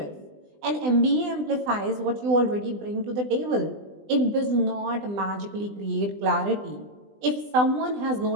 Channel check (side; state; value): left; late; 20 ms